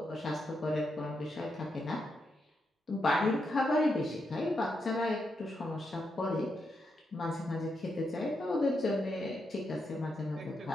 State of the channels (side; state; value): both; normal; correlation 0.83